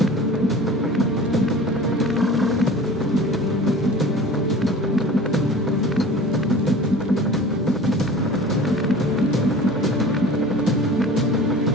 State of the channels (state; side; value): normal; both; correlation 0.41